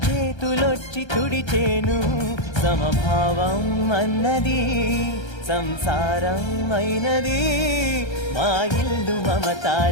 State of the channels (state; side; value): late; right; 1.3 ms